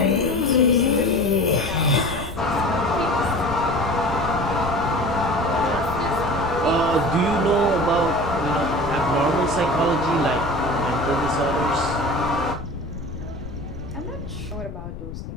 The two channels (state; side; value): noise; left; rumble, 10 dB below the sound